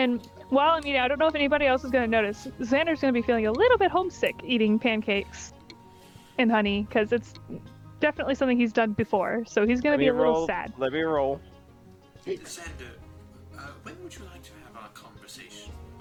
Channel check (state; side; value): identical; both; correlation 1.00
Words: while I'm eating, I don't know if anybody else is gonna notice, Xander's gonna be feeling a little bit homesick eating pancakes and honey, because it's definitely something he's done before, so he's gonna be a little sad. Let me roll. Xander, when would you like to have our conversation